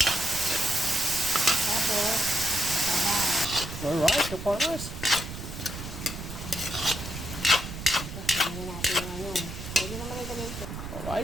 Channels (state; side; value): noise; right; rumble, 9 dB below the sound